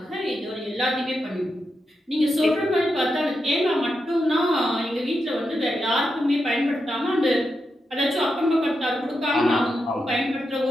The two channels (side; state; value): both; normal; correlation 0.86